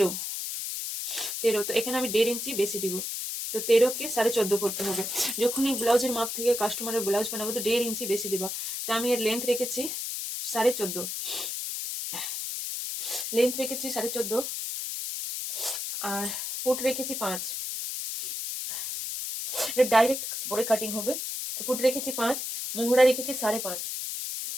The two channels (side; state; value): left; noise; hiss, 4 dB below the sound